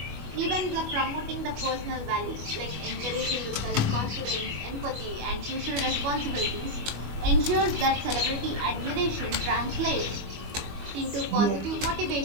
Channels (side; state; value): left; late; 25 ms